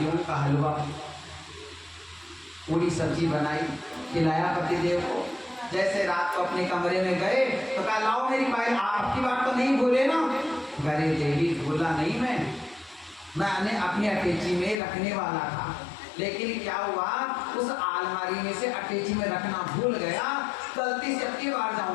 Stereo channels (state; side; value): drops out; right; at 14.8 s